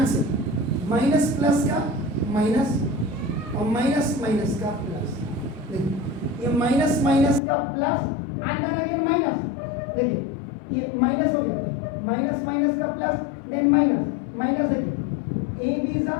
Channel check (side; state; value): right; drops out; at 7.4 s